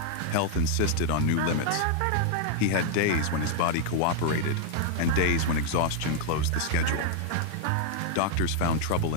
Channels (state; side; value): different; both; correlation 0.00